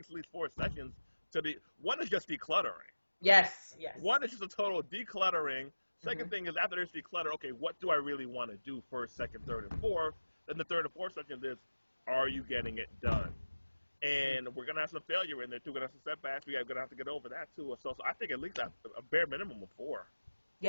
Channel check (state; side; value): inverted; both; correlation -1.00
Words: at least 4 sessions to be. One is just decluttering. Yes. One is just a total decluttering. Second thing is, after there's declutter, okay, what do I really want to do first, second, third, and fourth? Then the third and fourth section is, are you getting it done? And we're going to have some failure in there, too. We're going to have some setbacks. We're going to have to get over that, too. So I think at least a bare minimum of 4.